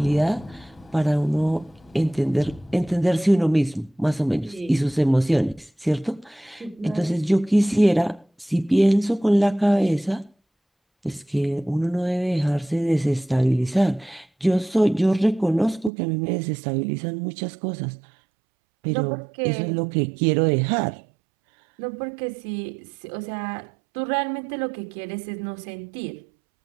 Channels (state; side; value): drops out; left; at 15.9 s